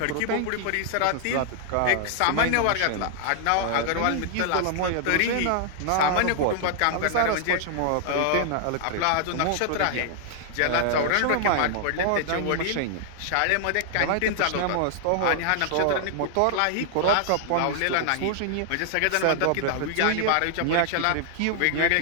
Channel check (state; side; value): different; both; correlation 0.00